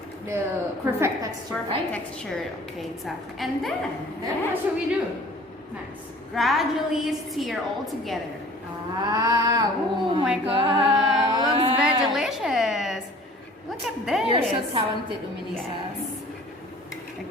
the perfect texture, Perfect right? texture. Okay, exactly. And then Then what should we do next? gradually stir all together. Ah, Oh my god, looks very delicious. Look at this. You're so talented, Uminisa. Yes.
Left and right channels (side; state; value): both; normal; correlation 0.48